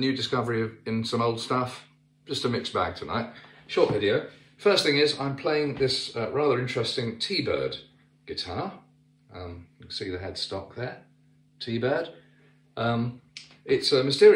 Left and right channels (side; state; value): both; identical; correlation 1.00